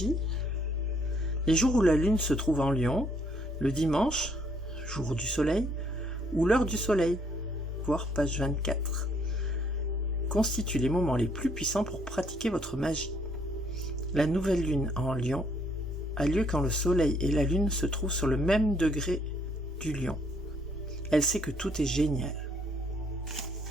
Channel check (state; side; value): normal; both; correlation 0.67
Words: Les jours où la lune se trouve en Lion, le dimanche, jour du soleil, ou l'heure du soleil, voir page 24, constituent les moments les plus puissants pour pratiquer votre magie. La nouvelle lune en Lion a lieu quand le soleil et la lune se trouvent sur le même degré du Lion. Elle sait que tout est génial.